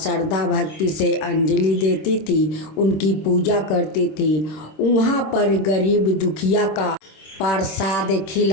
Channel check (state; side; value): late; right; 26 ms